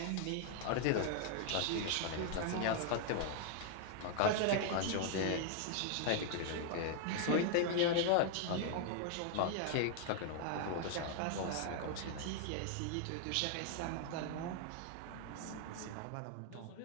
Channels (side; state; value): both; different; correlation 0.00